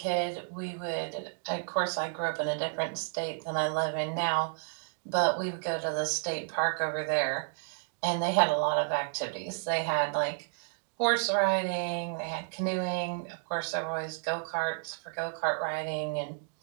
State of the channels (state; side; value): silent; left; digital silence